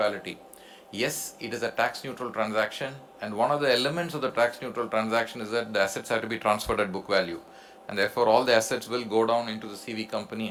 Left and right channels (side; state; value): both; identical; correlation 1.00